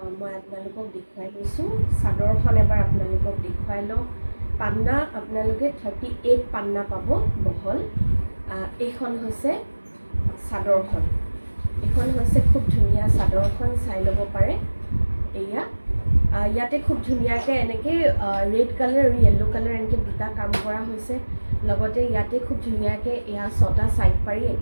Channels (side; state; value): both; inverted; correlation -1.00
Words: মই আপোনালোকক দেখুৱাই লৈছোঁ। চাদৰখন এবাৰ আপোনালোকক দেখুৱাই লওঁ। পান্না আপোনালোকে 38 পান্না পাব বহল। এইখন হৈছে চাদৰখন, এইখন হৈছে খুব ধুনীয়া চাদৰখন, চাই ল'ব পাৰে। এয়া ইয়াতে খুব ধুনীয়াকৈ এনেকৈ ৰেড কালাৰ আৰু য়েল্ল' কালাৰ এনেকৈ দুটা কাম কৰা হৈছে। লগতে ইয়াতে খুব ধুনীয়াকৈ এয়া 6টা ছাইড পাৰি